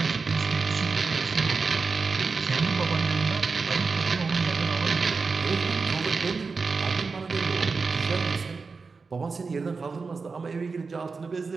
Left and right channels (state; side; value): quieter; left; 4.5 dB